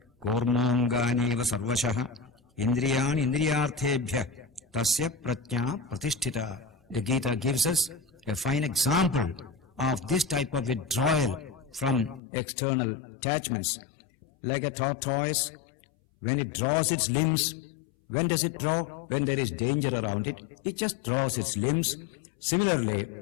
kurmonganiva sarvashah indriyani indriyarthebhya tasya pratnya pratisthita. The Gita gives us a fine example of this type of withdrawal from external attachments. Like a tortoise, when it draws its limbs, when does it draw? When there is danger around it, it just draws its limbs. Similarly,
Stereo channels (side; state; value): right; drops out; at 12.2 s